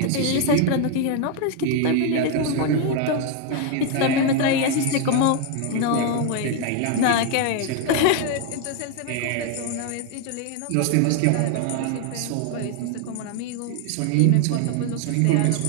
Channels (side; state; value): both; different; correlation 0.01